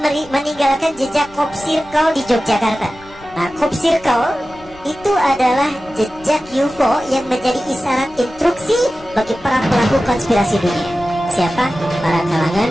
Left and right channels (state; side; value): noise; left; rumble, 23 dB below the sound